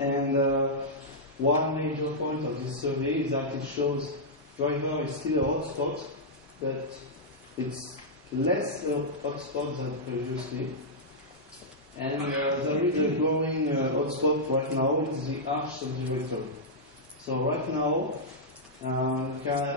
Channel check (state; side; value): normal; both; correlation -0.09